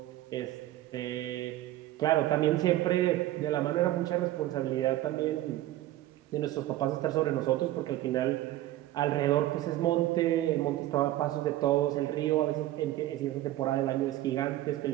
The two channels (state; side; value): quieter; left; 15.0 dB